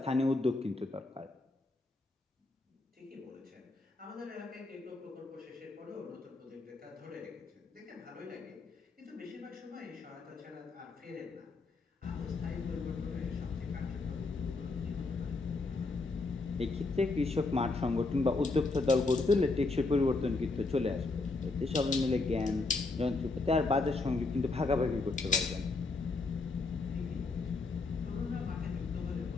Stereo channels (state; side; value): quieter; right; 3.5 dB